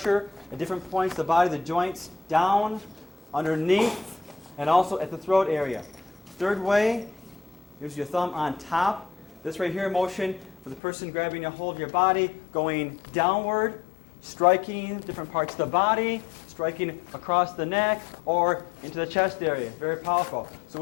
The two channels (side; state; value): right; drops out; at 10.8 s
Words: at different points of the body, the joints, down, underneath, and also at the throat area. Third way, use your thumb on top. This right here motion for the person grabbing a hold of your body, going downward, striking different parts of the body, striking across the neck or into the chest area. Very powerful. So